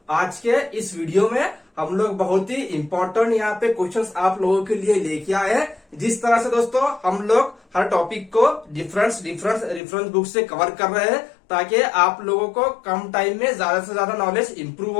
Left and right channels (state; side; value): drops out; right; at 9.8 s